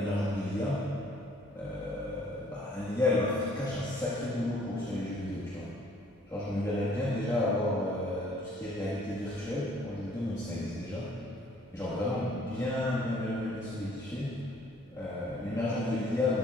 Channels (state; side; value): normal; both; correlation 0.60